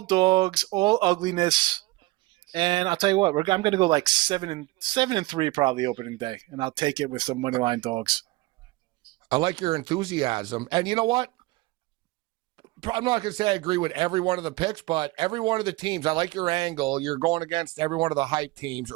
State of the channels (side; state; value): left; quieter; 20.8 dB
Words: all ugliness. And I'll tell you what, I'm going to go like 7-3 probably opening day. And I'll take it with some money line dogs. I like your enthusiasm. And you know what? I'm not going to say I agree with every one of the picks, but every one of the teams, I like your angle. You're going against every one of the hype teams